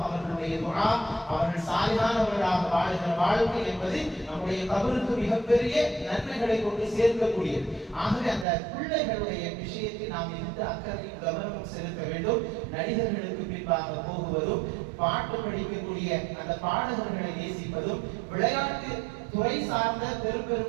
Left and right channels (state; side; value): drops out; left; at 8.5 s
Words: அவர்களுடைய துஆ, அவர்கள் சாலிஹானவர்களாக வாழ்கிற வாழ்க்கை என்பது நம்முடைய கபருக்கு மிகப்பெரிய நன்மைகளை கொண்டு சேர்க்கக்கூடியது. ஆகவே அந்த பிள்ளைகளுடைய விஷயத்தில் நாம் மிகுந்த அக்கறையும் கவனமும் செலுத்த வேண்டும். நடிகர்களுக்கு பின்பாக போகுவதும், பாட்டு படிக்கக்கூடிய அந்த பாடகர்களை நேசிப்பதும், விளையாட்டு துறை சார்ந்த பெரும்